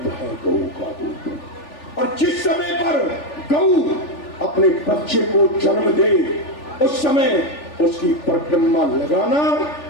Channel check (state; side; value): late; right; 3.4 ms